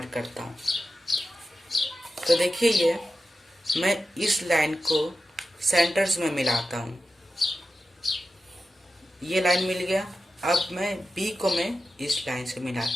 करता हूँ। तो देखिए ये मैं इस लाइन को सेंटर्स में मिलाता हूँ, ये लाइन मिल गया। अब मैं बी को मैं इस लाइन से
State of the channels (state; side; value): normal; both; correlation 0.92